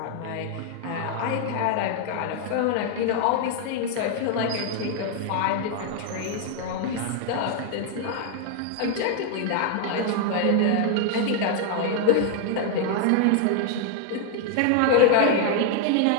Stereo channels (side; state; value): both; different; correlation 0.00